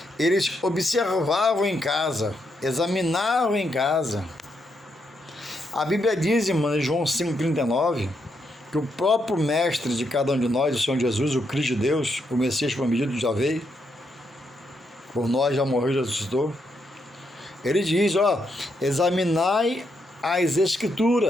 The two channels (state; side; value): normal; both; correlation 0.79